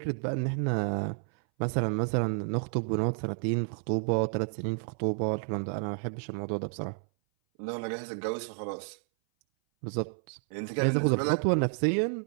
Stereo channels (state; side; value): silent; left; 57 dB below the other